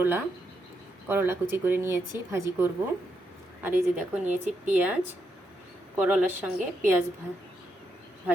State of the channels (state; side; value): normal; both; correlation 0.81